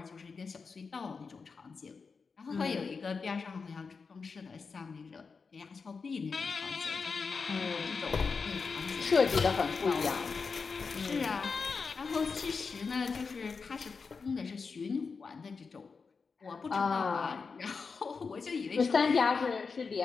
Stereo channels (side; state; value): right; quieter; 5.0 dB